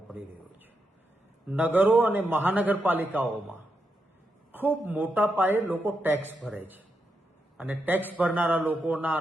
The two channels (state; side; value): normal; both; correlation 0.84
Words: પડી રહ્યો છે. નગરો અને મહાનગરપાલિકાઓમાં ખૂબ મોટા પાયે લોકો ટેક્સ ભરે છે અને ટેક્સ ભરનારા લોકોના